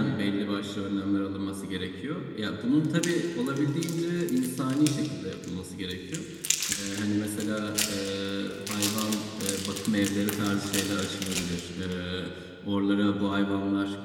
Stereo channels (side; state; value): both; identical; correlation 1.00